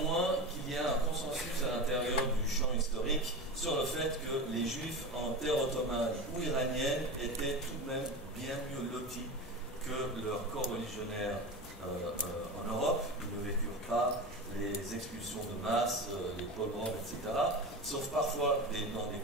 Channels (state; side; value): normal; both; correlation 0.26